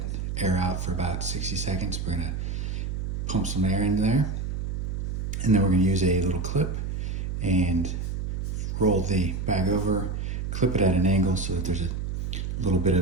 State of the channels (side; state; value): right; noise; hum, 3 dB below the sound